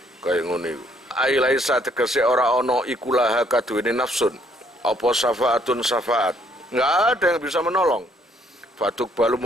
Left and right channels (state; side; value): normal; both; correlation 0.67